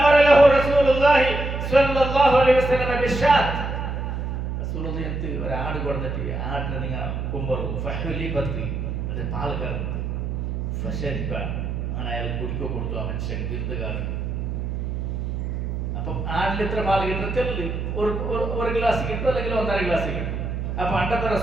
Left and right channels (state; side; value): noise; right; hum, 3 dB below the sound